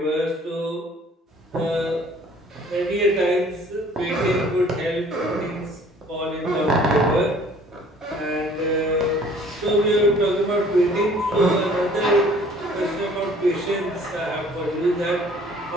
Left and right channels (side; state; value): both; normal; correlation 0.54